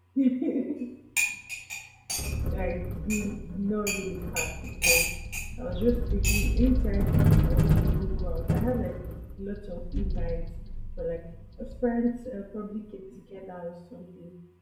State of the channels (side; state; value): both; identical; correlation 1.00